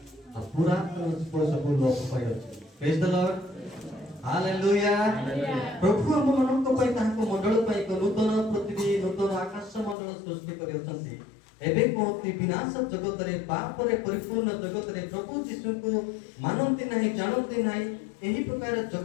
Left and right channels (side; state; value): right; drops out; at 10.0 s